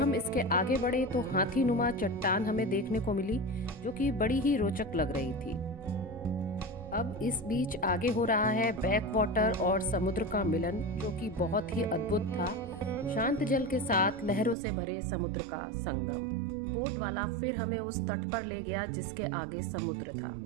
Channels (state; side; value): drops out; left; at 14.6 s